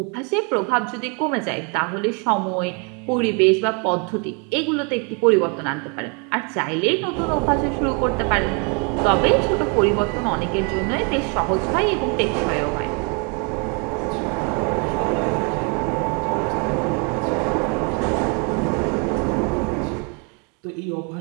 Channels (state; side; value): quieter; left; 34.5 dB